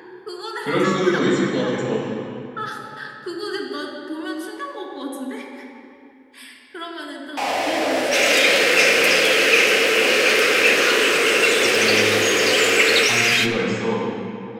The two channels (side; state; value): both; identical; correlation 1.00